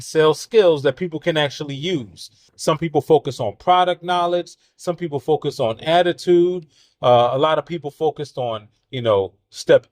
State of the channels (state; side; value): identical; both; correlation 1.00